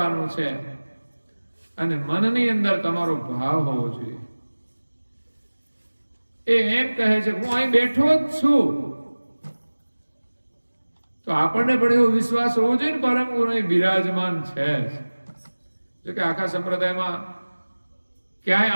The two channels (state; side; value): inverted; both; correlation -1.00